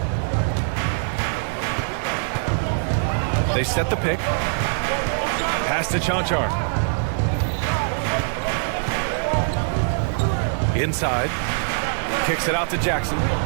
They set the pick. Pass to Chanchar. Inside. Kicks it out to Jackson.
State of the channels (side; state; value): left; silent; 64 dB below the other